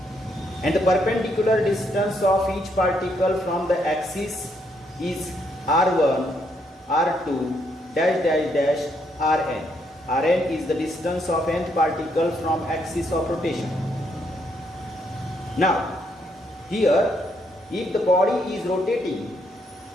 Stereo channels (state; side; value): normal; both; correlation 0.74